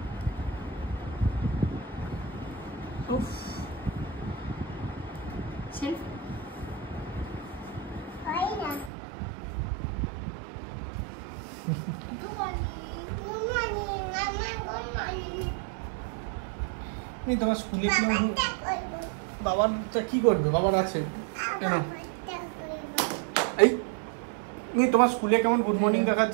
উফ, selfie. Good morning. Good morning. Mama, good morning. এই তোমার স্কুলে কি বাবাটা করবো। বাবারটা কি করবে? বাবার আছে। বাবাটা করবো। এই এই তোমার স্কুলে কেমন গুড মর্নিং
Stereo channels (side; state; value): left; drops out; at 8.9 s